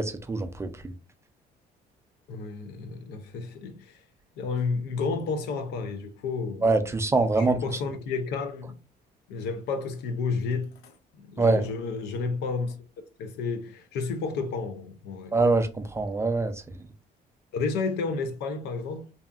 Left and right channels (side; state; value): both; normal; correlation 0.62